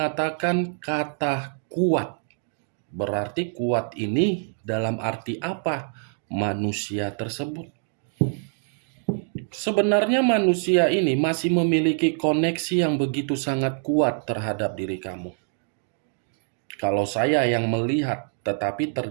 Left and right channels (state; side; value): silent; left; 62 dB below the other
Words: kata kuat. Berarti kuat ini dalam arti apa? Manusia tersebut. Sebenarnya manusia ini masih memiliki koneksi yang begitu sangat kuat terhadap diri kamu. Kalau saya yang melihat, tetapi